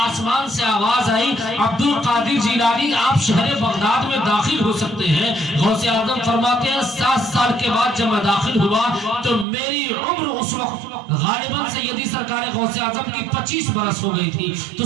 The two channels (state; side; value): drops out; left; at 9.5 s